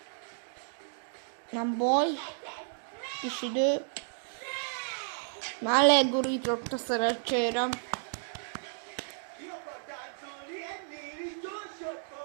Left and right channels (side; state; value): left; silent; digital silence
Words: Nem baj. Kis idő. Már legurított a szerencsére. Ki akar táncolni ennél is